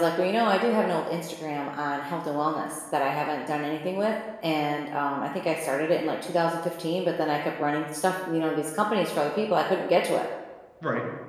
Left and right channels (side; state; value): both; identical; correlation 1.00